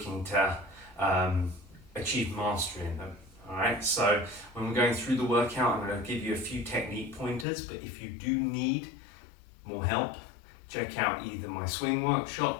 to achieve mastery in them. All right. So when we're going through the workout, I'm going to give you a few technique pointers. But if you do need more help, check out either my swing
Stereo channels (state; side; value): drops out; right; at 7.5 s